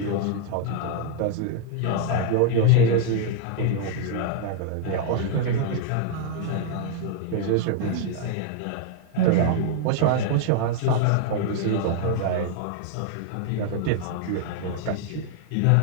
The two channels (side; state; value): both; different; correlation 0.00